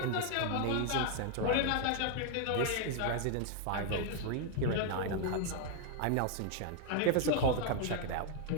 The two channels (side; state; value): both; different; correlation 0.00